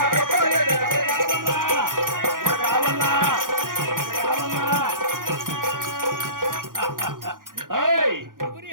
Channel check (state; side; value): late; left; 0.90 ms